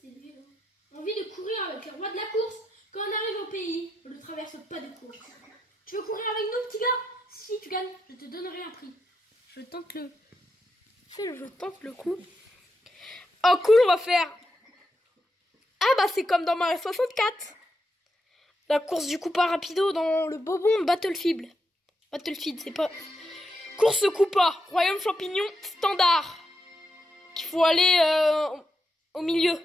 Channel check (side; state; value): both; normal; correlation 0.84